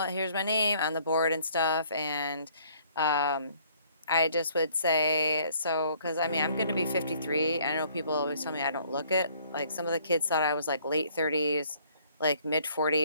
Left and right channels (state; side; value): inverted; both; correlation -0.61